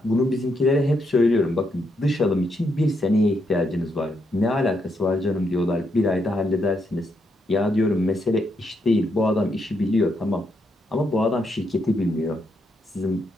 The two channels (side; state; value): both; normal; correlation 0.79